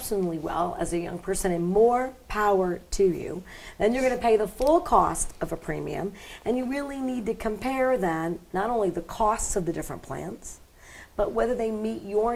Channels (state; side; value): identical; both; correlation 1.00